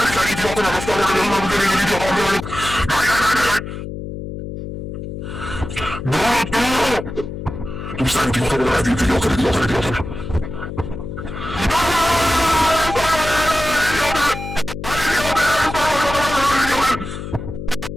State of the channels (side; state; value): left; noise; hum, 8 dB below the sound